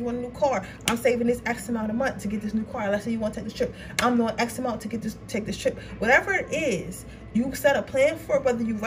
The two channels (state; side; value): identical; both; correlation 1.00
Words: want a new car. I'm saving this X amount a month to get this new car. Let's say you want to take this trip. I'm doing X amount to take this trip. Whatever it is, you set a plan for it, whether you